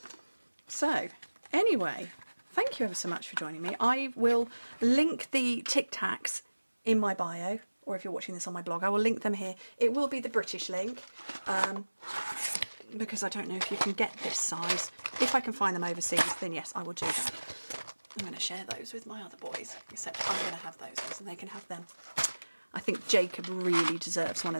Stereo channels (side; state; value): both; inverted; correlation -1.00